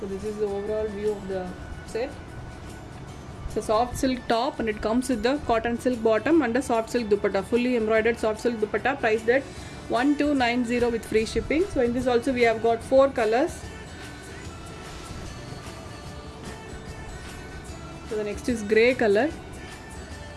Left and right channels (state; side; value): identical; both; correlation 1.00